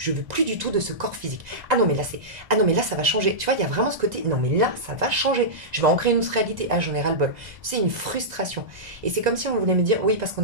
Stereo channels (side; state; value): left; late; 1.9 ms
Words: veux plus du tout de ce corps physique. Ah non mais là ça va changer. Tu vois, il y a vraiment ce côté non mais là ça va changer. Je vais en créer une autre réalité. Ah j'en ai ras-le-bol. C'est une frustration. Et c'est comme si on voulait me dire oui parce qu'on